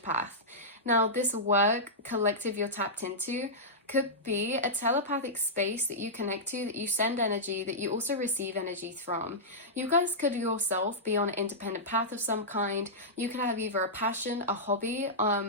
path. Now, this work collective you're tapped into could be a telepathic space that you connect to, that you send energy, that you also receive energy from. You guys could yourself be on an independent path of some kind. You could have either a passion, a hobby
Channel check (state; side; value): normal; both; correlation -0.12